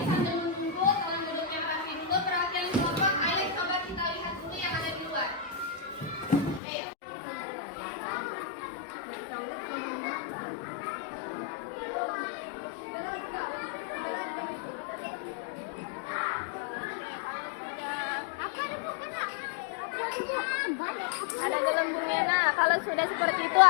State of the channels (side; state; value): right; drops out; at 6.6 s